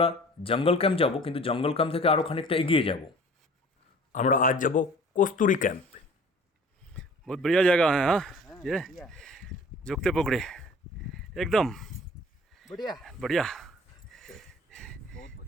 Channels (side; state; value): both; normal; correlation 0.49